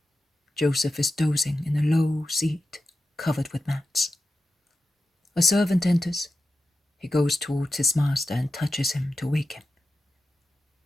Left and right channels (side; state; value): both; normal; correlation 0.92